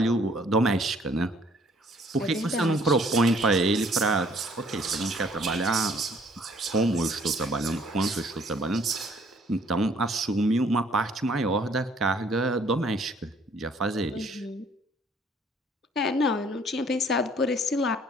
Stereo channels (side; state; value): both; normal; correlation 0.60